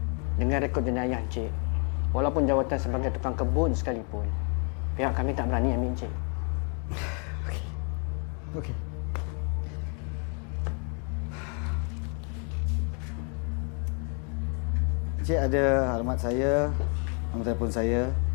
Dengan rekod jenayah Encik, walaupun jawatan sebagai tukang kebun sekalipun, pihak kami tak berani ambil Encik. Okey. Cik ada alamat saya, nombor telefon saya.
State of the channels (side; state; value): right; quieter; 38.7 dB